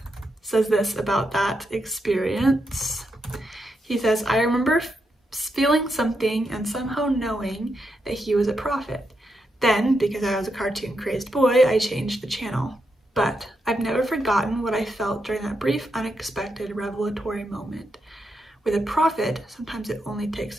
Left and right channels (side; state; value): both; normal; correlation 0.83